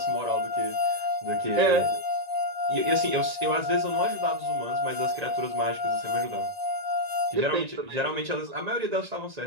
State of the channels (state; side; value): late; left; 1.9 ms